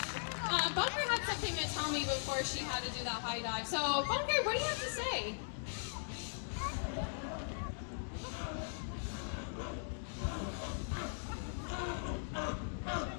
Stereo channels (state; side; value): silent; right; digital silence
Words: Bunker had something to tell me before she had to do that high dive. So, Bunker, what do you have to say?